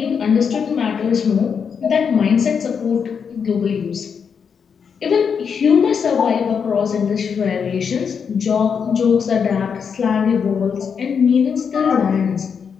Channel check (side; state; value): right; quieter; 6.6 dB